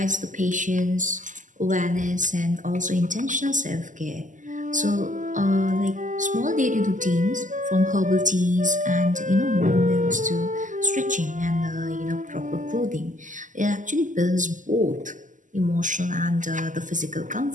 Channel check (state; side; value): late; left; 0.37 ms